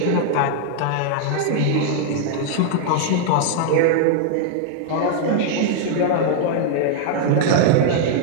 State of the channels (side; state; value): both; different; correlation 0.00